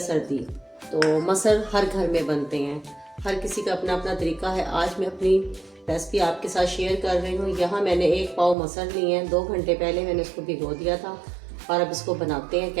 सर्दी तो मसर हर घर में बनते हैं, हर किसी का अपना अपना तरीका है। आज मैं अपनी रेसिपी आपके साथ शेयर कर रही हूँ। यहाँ मैंने 1 पाव मसर लिए हैं, 2 घंटे पहले मैंने इसको भिगो दिया था और अब इसको बनाते हैं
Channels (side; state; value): left; drops out; at 8.6 s